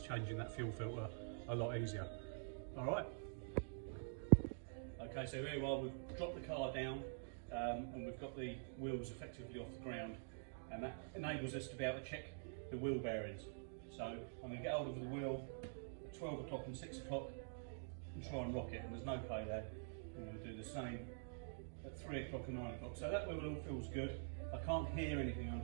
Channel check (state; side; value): silent; left; digital silence